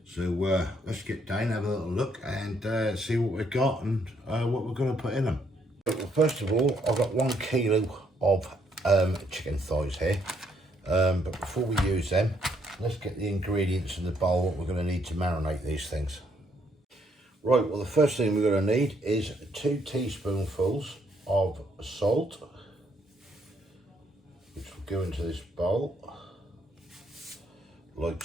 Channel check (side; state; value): both; normal; correlation 0.71